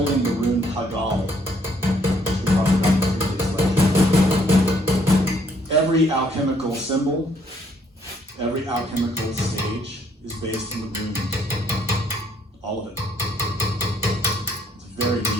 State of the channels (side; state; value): both; normal; correlation 0.67